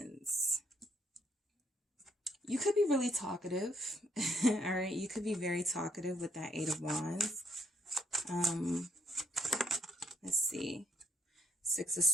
You could be really talkative. All right, you could be very talkative with that 8 of Wands. Let's see. 6 of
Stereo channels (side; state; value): both; normal; correlation 0.71